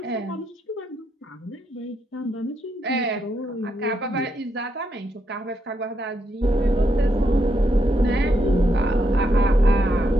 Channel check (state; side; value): normal; both; correlation 0.79